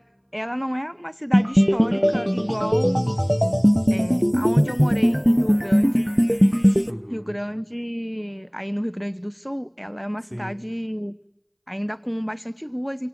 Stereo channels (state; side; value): identical; both; correlation 1.00